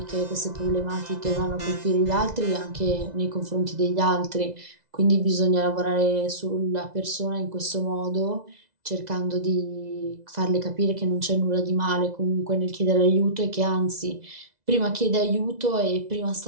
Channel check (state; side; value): late; left; 2.0 ms